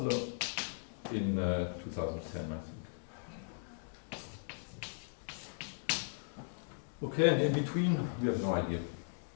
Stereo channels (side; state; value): right; silent; digital silence